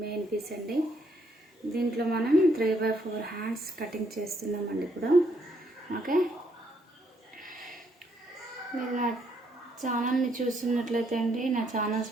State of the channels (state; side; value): normal; both; correlation 0.72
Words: మెయిన్ పీస్ అండి. దీంట్లో మనం 3/4 హ్యాండ్స్ కటింగ్ చేస్తున్నామండి ఇప్పుడు. ఓకే, మీరు నా ఛానల్ని చూస్తున్నట్లయితే అండి, నా ఛానల్స్